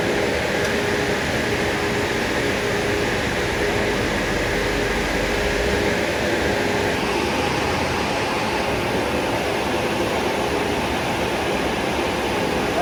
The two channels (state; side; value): identical; both; correlation 1.00